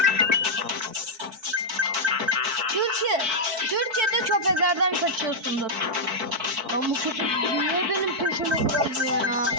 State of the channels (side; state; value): left; late; 4.5 ms